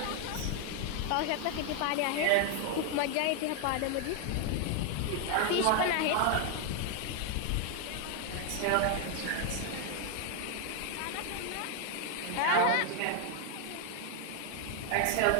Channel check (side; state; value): both; different; correlation 0.00